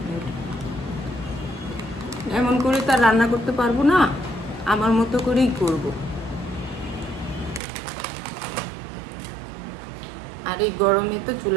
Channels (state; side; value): drops out; left; at 7.6 s